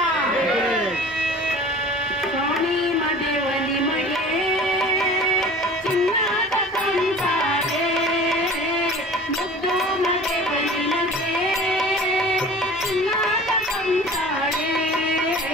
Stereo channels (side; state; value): both; normal; correlation 0.42